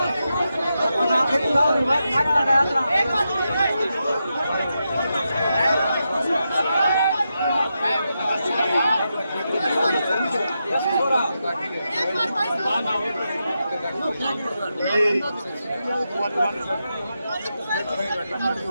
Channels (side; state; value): both; inverted; correlation -0.87